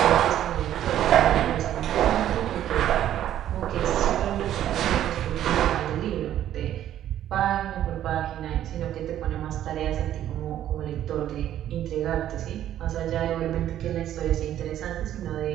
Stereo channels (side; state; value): left; quieter; 11.6 dB